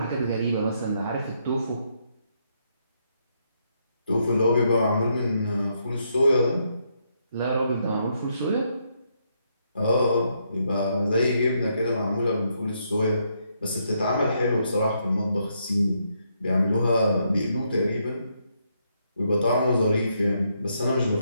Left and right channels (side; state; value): both; inverted; correlation -0.77